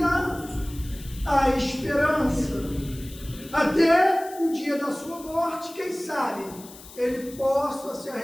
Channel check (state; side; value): noise; left; hiss, 18 dB below the sound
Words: há esperança. Até o dia da sua morte, quem sabe, ele possa se